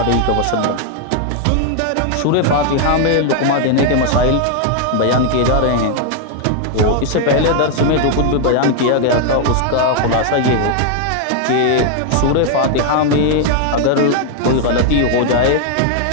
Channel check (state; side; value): different; both; correlation 0.00